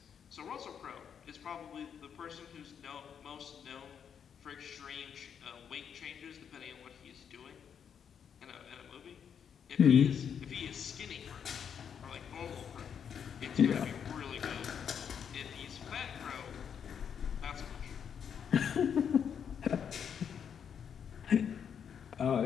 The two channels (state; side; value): quieter; right; 7.7 dB